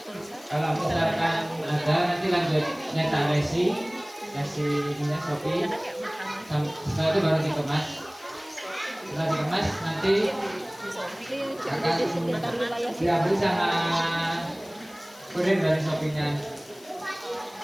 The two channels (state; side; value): noise; left; hiss, 23 dB below the sound